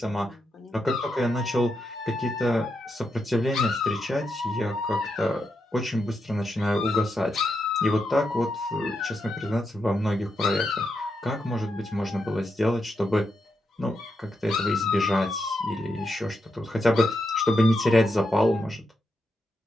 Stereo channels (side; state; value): both; normal; correlation 0.84